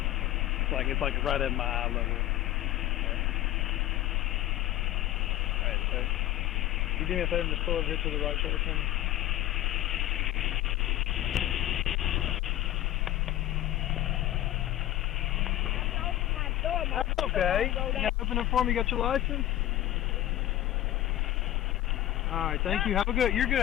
It's like right at my eye level. Alright, sir. You do me a favor and just pull over here to the right shoulder for me? That's okay. You gotta open it for me. You got your license? Alright, thank you. Have a good, you're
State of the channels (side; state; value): right; quieter; 14.0 dB